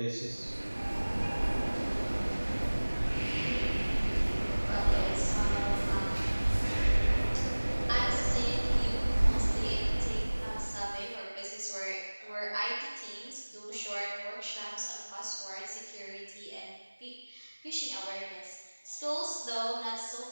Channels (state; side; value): inverted; both; correlation -1.00